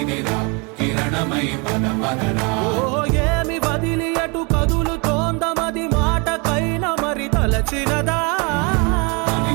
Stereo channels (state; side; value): quieter; left; 31.1 dB